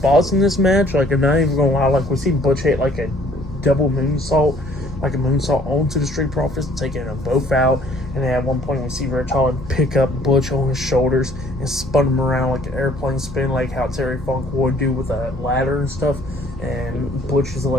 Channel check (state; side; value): normal; both; correlation 0.58